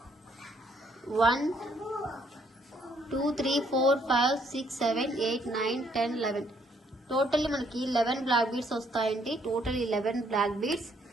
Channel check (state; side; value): normal; both; correlation 0.68